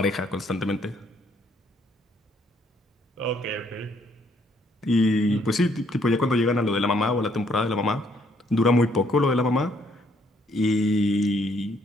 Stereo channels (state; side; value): normal; both; correlation 0.68